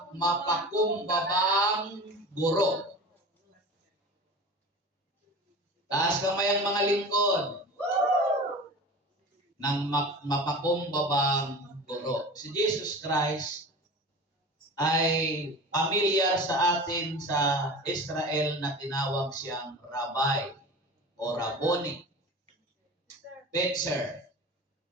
mapakumbabang guro. Taas kamay ang mga lingkod ng mapakumbabang guro. Si Jesus Christ ay pamilyar sa atin sa Israel na tinawag siyang Rabbi o Rabboni, teacher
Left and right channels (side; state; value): both; normal; correlation 0.34